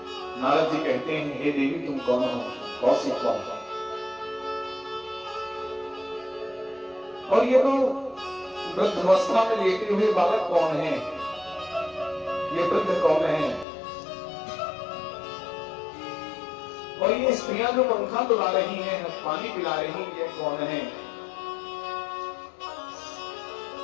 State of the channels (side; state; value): right; drops out; at 13.7 s